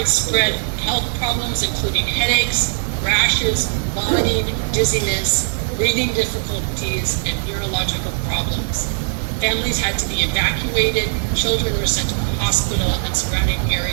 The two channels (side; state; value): left; silent; 60 dB below the other